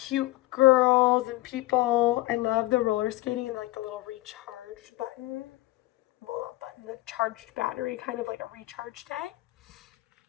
girls and people. I love the roller skating and like the little recharge button. Well, not button, the charged battery, kind of like a recharge day.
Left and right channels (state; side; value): quieter; right; 18.4 dB